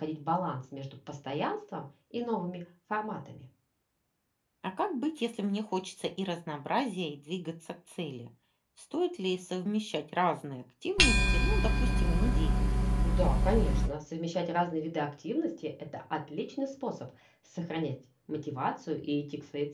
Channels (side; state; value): both; identical; correlation 1.00